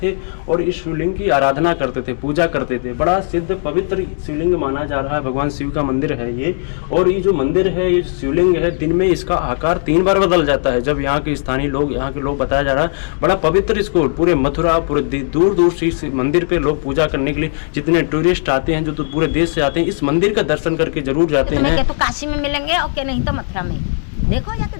और इस शिवलिंग की आराधना करते थे, पूजा करते थे। बड़ा सिद्ध पवित्र शिवलिंग माना जा रहा है, भगवान शिव का मंदिर है ये। और ये जो मंदिर है, ये शिवलिंग है, दिन में इसका आकार 3 बार बदल जाता है। जब यहाँ के स्थानीय लोग, यहाँ के लोग बताया जा रहा है, बड़ा पवित्र इसको पूरे मथुरा, पूरे दूर दूर से इस मंदिर पे लोग पूजा करने के लिए, जितने टूरिस्ट आते हैं, जो तो पूरे देश से आते हैं, इस मंदिर का दर्शन करके जरूर जाते हैं। तो काशी में मिलेंगे और क्या, नहीं तो मथुरा में। देखो जाके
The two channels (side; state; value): right; silent; 68 dB below the other